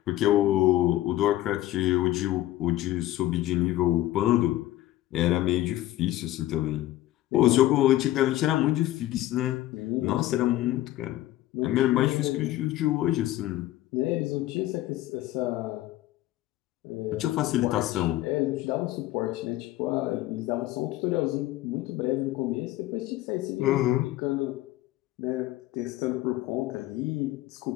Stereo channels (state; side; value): quieter; right; 15.3 dB